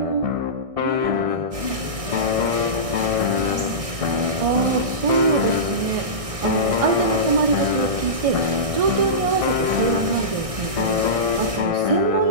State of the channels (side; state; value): left; late; 1.6 ms